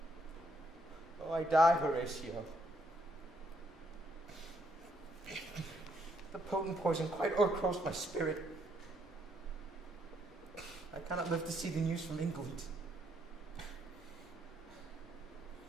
Oh, I die, Horatio. The potent poison quite o'ercrows my spirit. I cannot live to see the news from England.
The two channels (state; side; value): normal; both; correlation 0.73